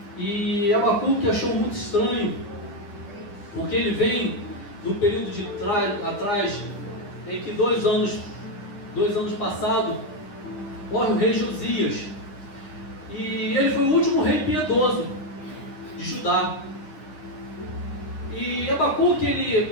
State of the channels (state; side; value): late; right; 9.8 ms